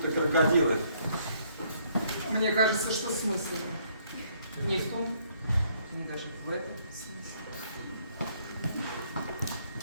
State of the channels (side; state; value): both; inverted; correlation -0.67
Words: крокодилы. Мне кажется, что смысл не в том, не даже в этом смысле.